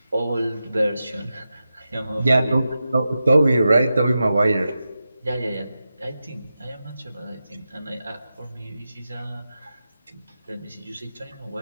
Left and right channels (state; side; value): inverted; both; correlation -0.91